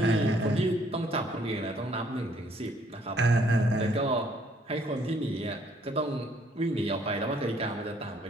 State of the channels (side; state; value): both; normal; correlation 0.65